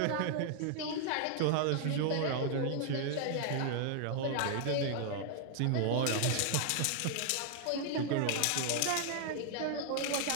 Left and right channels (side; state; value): both; different; correlation 0.00